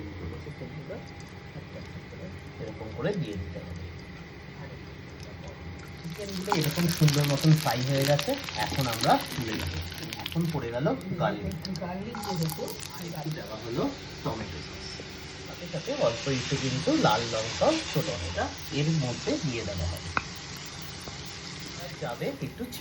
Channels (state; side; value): identical; both; correlation 1.00